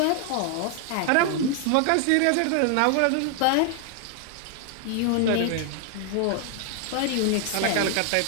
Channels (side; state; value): both; different; correlation 0.00